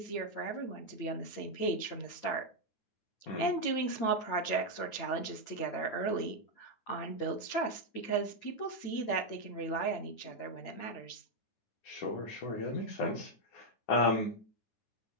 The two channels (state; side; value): late; right; 8.9 ms